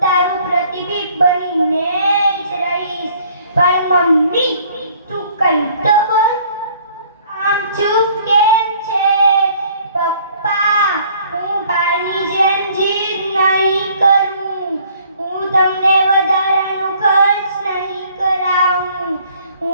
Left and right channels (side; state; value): both; inverted; correlation -0.58